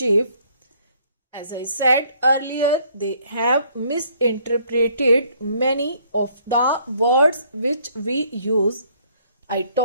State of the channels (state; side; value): inverted; both; correlation -0.64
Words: As I said earlier, they have misinterpreted many of the words which we use. I